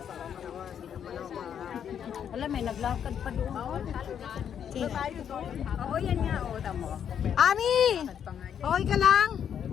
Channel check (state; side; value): quieter; right; 8.6 dB